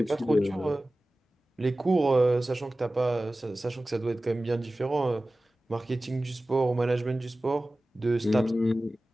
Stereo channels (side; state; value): both; normal; correlation 0.96